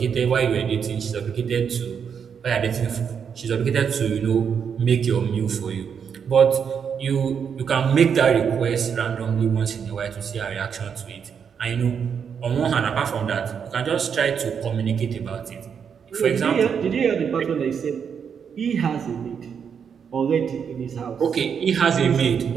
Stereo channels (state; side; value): quieter; left; 7.1 dB